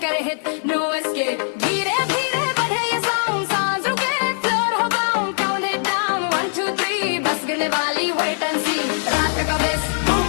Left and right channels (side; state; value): right; silent; digital silence